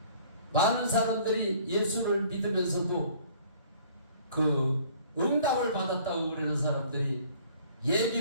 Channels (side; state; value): both; inverted; correlation -0.54